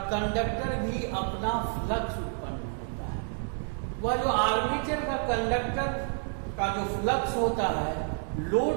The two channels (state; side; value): silent; left; 58 dB below the other